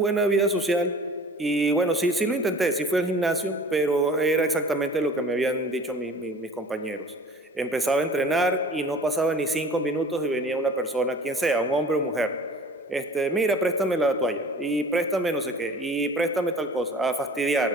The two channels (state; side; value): normal; both; correlation 0.44